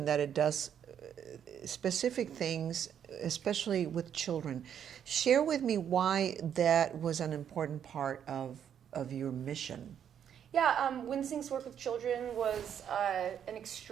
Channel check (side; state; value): left; quieter; 8.9 dB